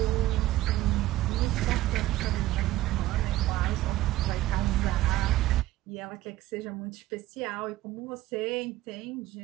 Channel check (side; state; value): left; quieter; 15.7 dB